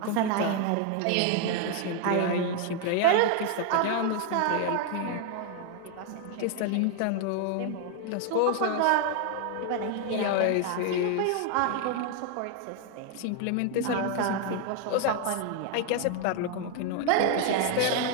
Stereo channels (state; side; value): different; both; correlation 0.00